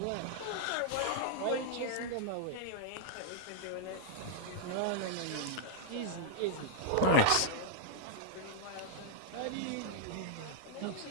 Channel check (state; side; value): different; both; correlation -0.01